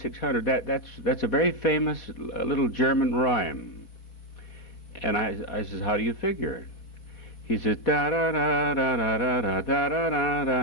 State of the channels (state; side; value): late; right; 4.5 ms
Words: that's a very famous little German rhyme. And I says, how do you figure? He says,